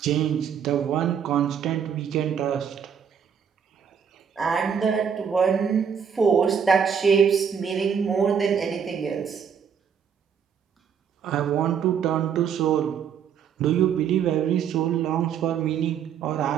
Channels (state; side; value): quieter; left; 7.5 dB